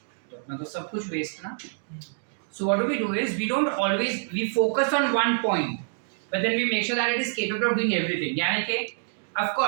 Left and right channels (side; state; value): left; silent; digital silence